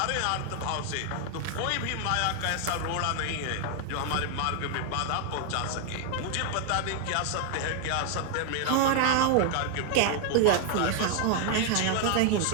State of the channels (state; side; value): different; both; correlation 0.00